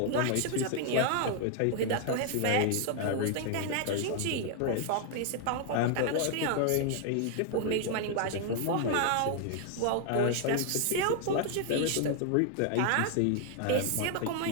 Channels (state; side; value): different; both; correlation 0.00